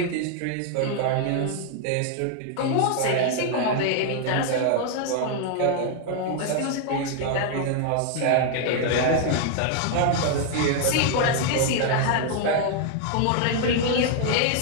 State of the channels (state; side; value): different; both; correlation 0.00